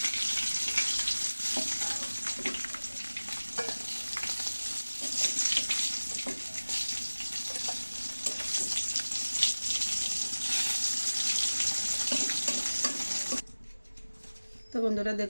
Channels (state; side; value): inverted; both; correlation -1.00